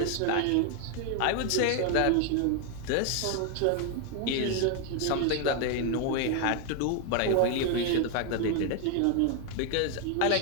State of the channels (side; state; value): both; different; correlation 0.01